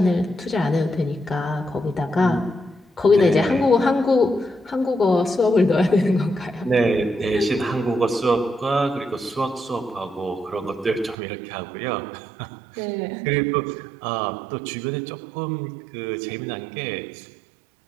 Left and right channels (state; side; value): drops out; left; at 11.2 s